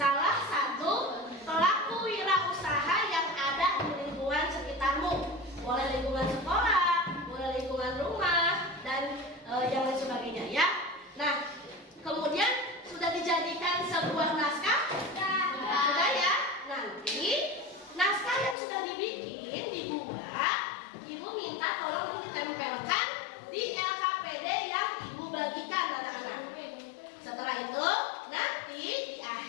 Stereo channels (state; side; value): drops out; right; at 18.6 s